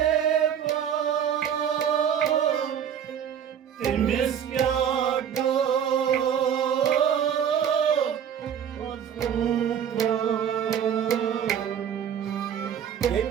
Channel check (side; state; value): left; quieter; 8.6 dB